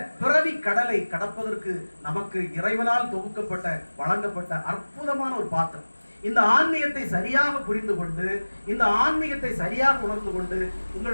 பிறவி கடலை கடப்பதற்கு நமக்கு இறைவனால் தொகுக்கப்பட்ட வழங்கப்பட்ட அற்புதமான ஒரு பாத்திரம். இந்த ஆன்மீகத்தை சரியாக புரிந்து கொண்டு, இந்த ஆன்மீகத்தை சரியாக உணர்ந்து கொண்டு,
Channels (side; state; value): both; inverted; correlation -1.00